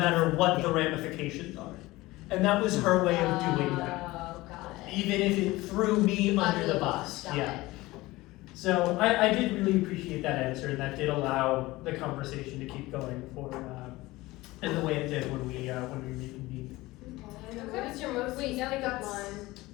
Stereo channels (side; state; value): right; quieter; 19.6 dB